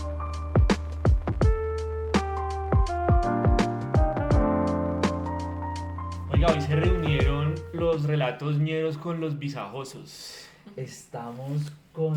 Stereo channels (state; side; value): identical; both; correlation 1.00